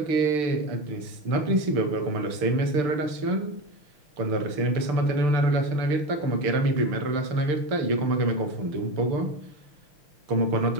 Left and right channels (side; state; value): left; late; 6.7 ms